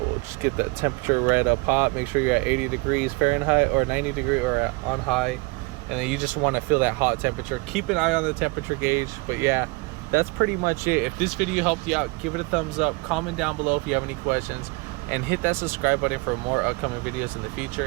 just get that temperature right up hot. Make sure you're at 80 degrees Fahrenheit or 90 degree or on high, and then you just want to feel that hot temperature. Keep an eye on the temperature gauge. But yeah, that's pretty much it. If this video helped you out, give it a thumbs up, comment down below if you have any questions, and hit that subscribe button for more upcoming videos in the future.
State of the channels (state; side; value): quieter; left; 26.9 dB